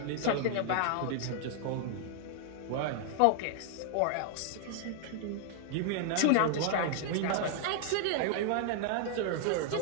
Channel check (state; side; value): different; both; correlation 0.00